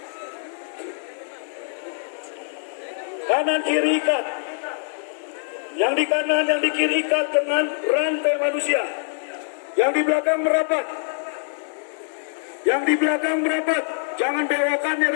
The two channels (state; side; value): silent; right; digital silence